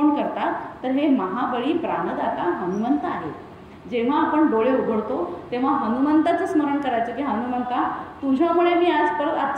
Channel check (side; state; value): both; identical; correlation 1.00